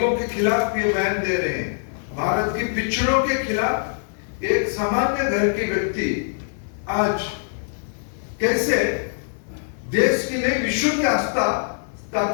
के खिलाफ ये बयान दे रहे हैं, भारत के पिछड़ों के खिलाफ एक सामान्य घर के व्यक्ति आज कैसे देश की नहीं विश्व की आस्था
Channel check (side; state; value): right; silent; 63 dB below the other